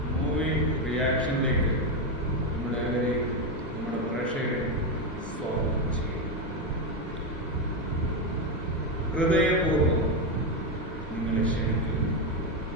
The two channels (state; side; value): normal; both; correlation 0.09